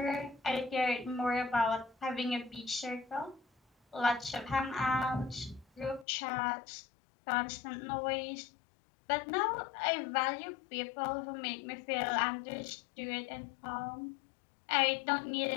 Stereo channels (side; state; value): right; drops out; at 6.1 s